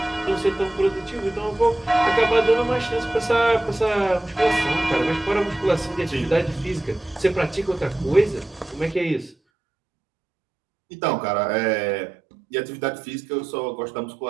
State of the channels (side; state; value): left; drops out; at 9.3 s